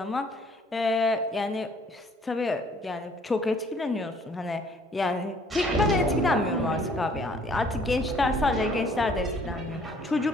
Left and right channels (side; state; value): both; normal; correlation 0.59